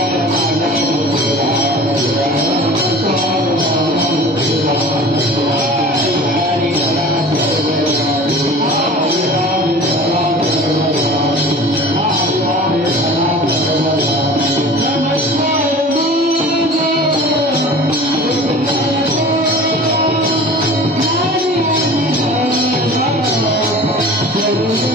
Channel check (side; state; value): both; normal; correlation 0.40